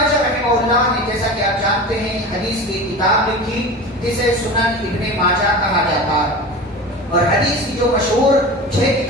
رحمہ اللہ نے جیسا کہ آپ جانتے ہیں حدیث کی کتاب لکھی جسے سنن ابن ماجہ کہا جاتا ہے, اور حدیث کی جو مشہور 6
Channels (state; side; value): normal; both; correlation 0.32